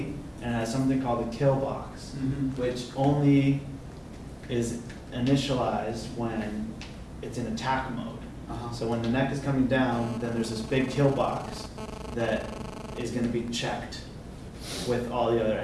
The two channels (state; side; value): identical; both; correlation 1.00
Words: and it has something called the kill box, which only is initialized when it's in attack mode. So when the neck is coming down, then there's this big kill box that is going to be checked with all the other